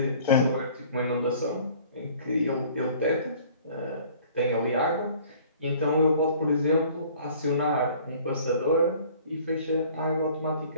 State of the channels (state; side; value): inverted; both; correlation -0.52